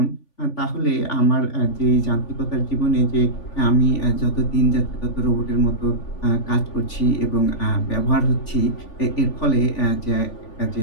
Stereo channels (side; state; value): right; late; 3.5 ms